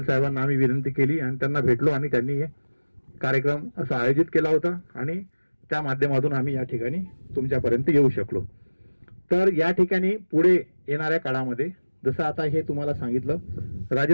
साहेबांना आम्ही विनंती केली आणि त्यांना भेटलो आणि त्यांनी हे कार्यक्रम असा आयोजित केला होता आणि त्या माध्यमातून आम्ही या ठिकाणी तुमच्यापर्यंत येऊ शकलो. तर या ठिकाणी पुढे येणाऱ्या काळामध्ये जसं आता हे तुम्हाला सांगितलं,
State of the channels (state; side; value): inverted; both; correlation -1.00